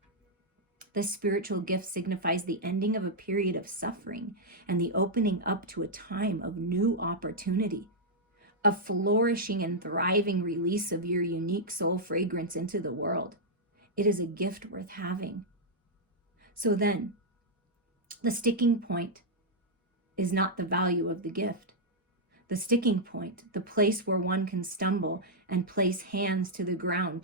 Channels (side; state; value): both; normal; correlation -0.05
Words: The spiritual gift signifies the ending of a period of suffering and the opening up to a time of new opportunity, a flourishing and thriving release of your unique soul fragrance into the world. It is a gift worth having. So then, the sticking point is not the value of the gift. The sticking point, the place where one can stumble and place hands to the ground